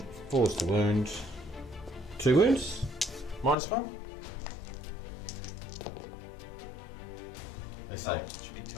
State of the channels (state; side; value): drops out; right; at 3.6 s